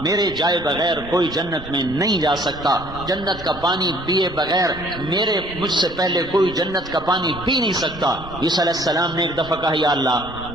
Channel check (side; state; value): both; normal; correlation 0.57